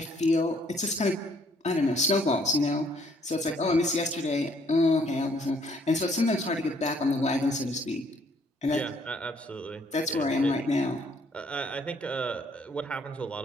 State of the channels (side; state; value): both; normal; correlation 0.65